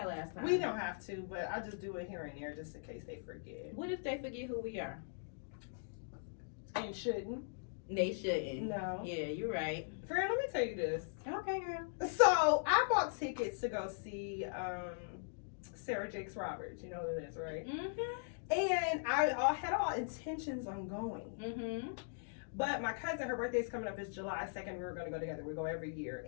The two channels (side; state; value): right; silent; digital silence